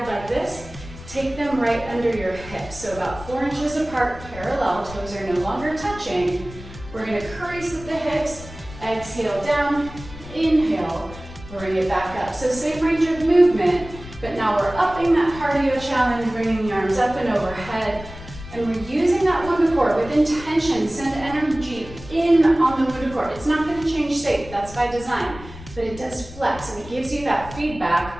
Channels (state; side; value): noise; left; rumble, 15 dB below the sound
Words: like this, take them right under your hips. So about 4 inches apart, parallel, toes are no longer touching. We're going to crease at the hips, exhale down, inhale, bring it back up. So same range of movement, but now we're upping that cardio challenge, bringing the arms up and overhead. And we're using that WundaCore with intention. Send energy in on the WundaCore. It's not going to change shape, that's by design, but it does flex and it gives you that